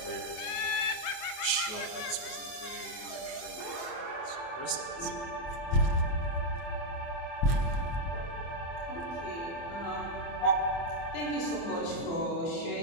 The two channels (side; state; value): right; late; 24 ms